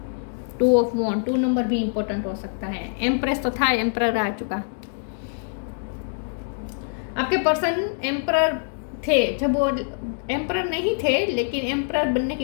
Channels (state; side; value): silent; right; digital silence